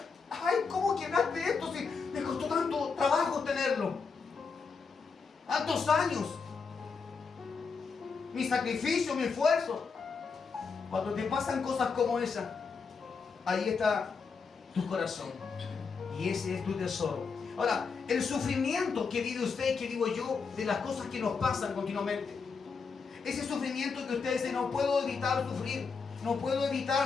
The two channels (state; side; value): quieter; right; 5.2 dB